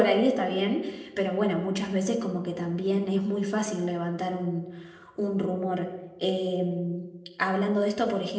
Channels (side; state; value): both; identical; correlation 1.00